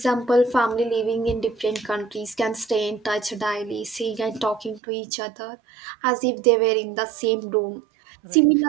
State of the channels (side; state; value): left; drops out; at 4.8 s